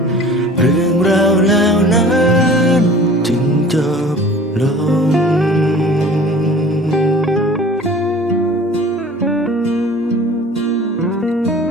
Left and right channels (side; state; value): both; normal; correlation 0.45